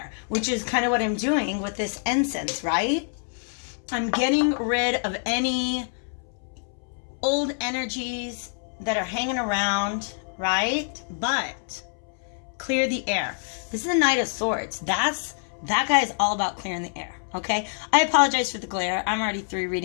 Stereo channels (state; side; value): silent; right; 61 dB below the other